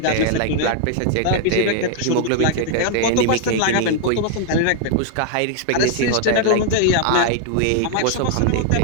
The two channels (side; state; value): both; different; correlation 0.00